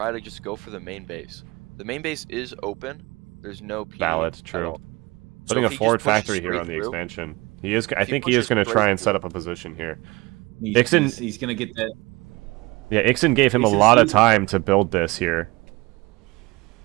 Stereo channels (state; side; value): quieter; left; 23.0 dB